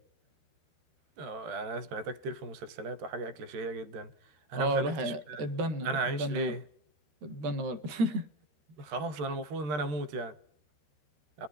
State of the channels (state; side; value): late; left; 13 ms